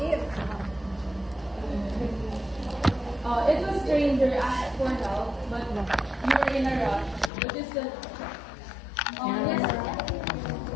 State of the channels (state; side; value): drops out; right; at 7.3 s